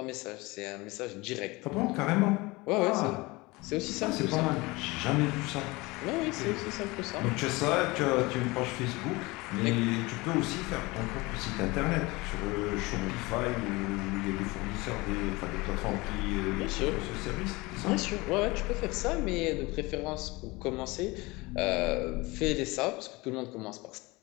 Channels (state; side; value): quieter; right; 23.1 dB